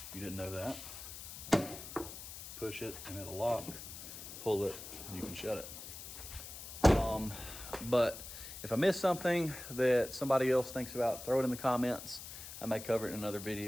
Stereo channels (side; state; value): left; noise; hiss, 11 dB below the sound